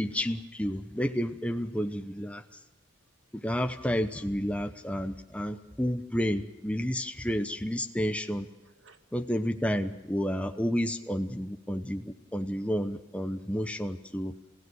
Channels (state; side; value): normal; both; correlation 0.87